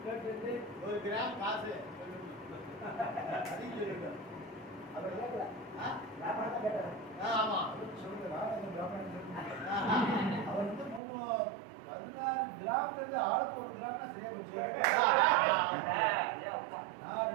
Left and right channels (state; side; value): drops out; left; at 11.0 s